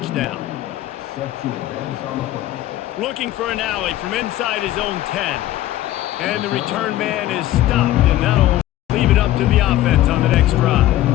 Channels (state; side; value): quieter; right; 14.3 dB